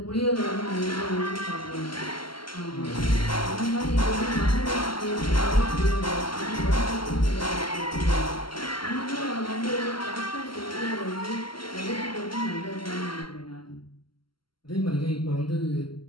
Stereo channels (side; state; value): right; late; 0.73 ms